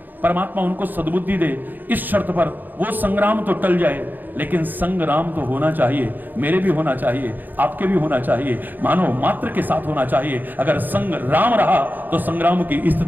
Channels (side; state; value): left; late; 0.087 ms